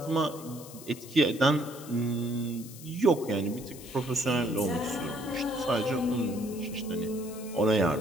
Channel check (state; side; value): noise; left; hiss, 16 dB below the sound